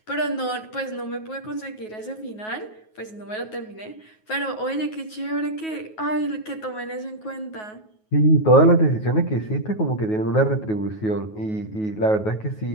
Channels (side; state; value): right; late; 9.4 ms